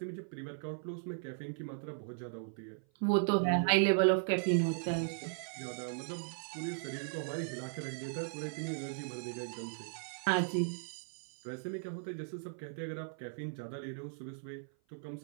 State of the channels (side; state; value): left; silent; 53 dB below the other